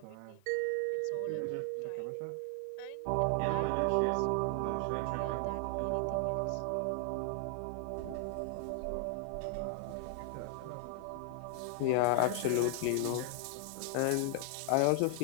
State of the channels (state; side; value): different; both; correlation 0.00